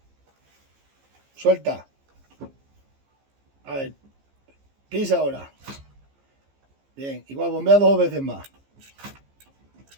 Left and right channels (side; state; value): left; late; 15 ms